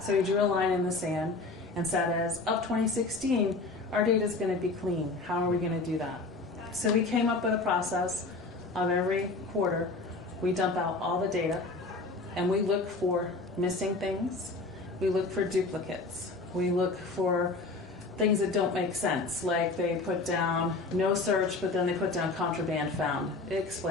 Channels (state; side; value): quieter; right; 3.5 dB